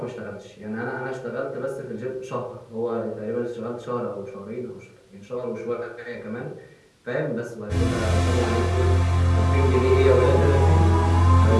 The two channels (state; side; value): identical; both; correlation 1.00